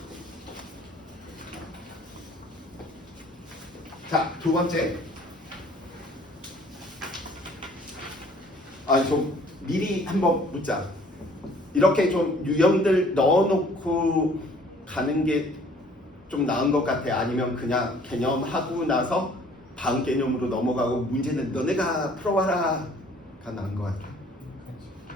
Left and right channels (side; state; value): both; normal; correlation 0.56